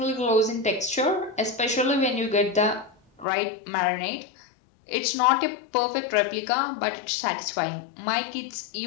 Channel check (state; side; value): drops out; right; at 3.2 s